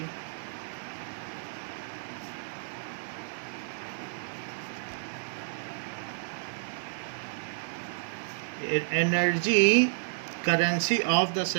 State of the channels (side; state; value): left; silent; digital silence